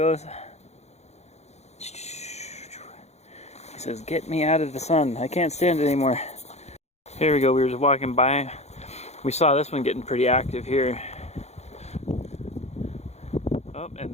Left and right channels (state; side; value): late; right; 0.32 ms